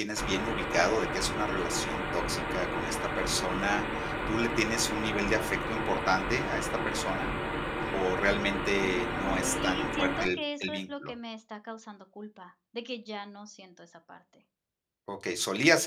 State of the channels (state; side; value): identical; both; correlation 1.00